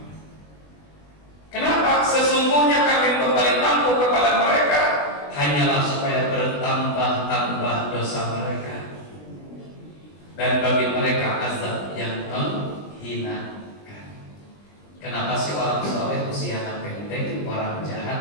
Kenapa? Sesungguhnya kami memberi tangguh kepada mereka hanyalah supaya bertambah-tambah dosa mereka dan bagi mereka azab yang menghinakan. Kenapa sih orang soleh usianya pendek, orang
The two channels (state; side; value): late; right; 20 ms